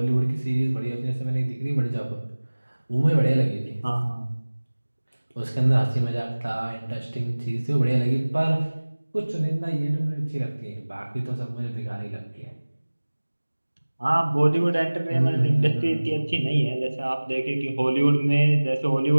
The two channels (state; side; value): inverted; both; correlation -1.00